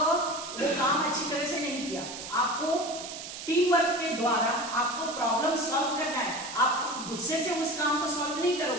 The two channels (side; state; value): right; noise; hiss, 9 dB below the sound